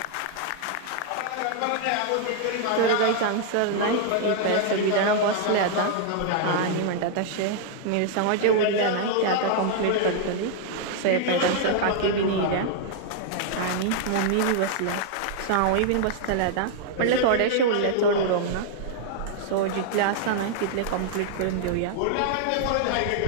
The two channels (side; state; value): both; different; correlation -0.01